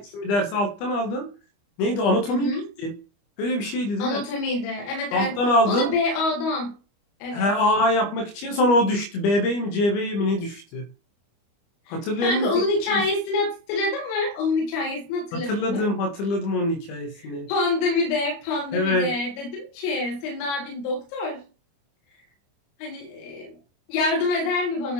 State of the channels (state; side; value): late; right; 25 ms